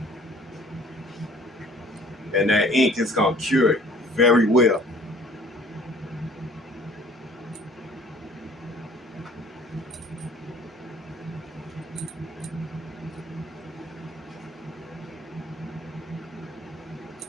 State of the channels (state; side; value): normal; both; correlation 0.53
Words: And that ink is gonna cure it very well.